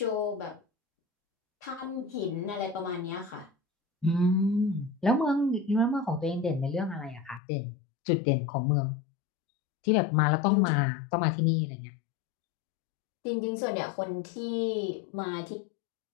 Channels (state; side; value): drops out; right; at 7.4 s